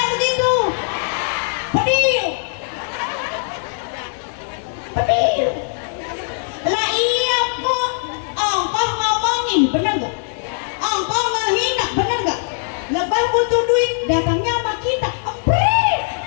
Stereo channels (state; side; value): silent; right; digital silence